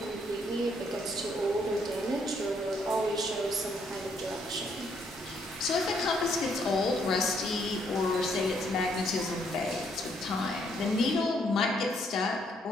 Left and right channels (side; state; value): both; normal; correlation 0.71